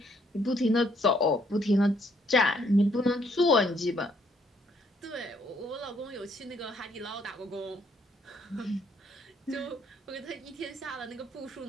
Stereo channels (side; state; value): both; normal; correlation 0.68